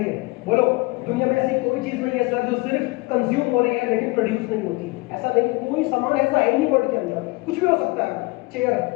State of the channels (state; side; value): quieter; right; 24.5 dB